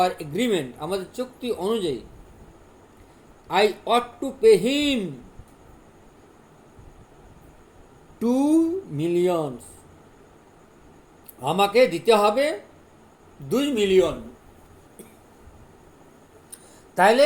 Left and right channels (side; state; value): both; identical; correlation 1.00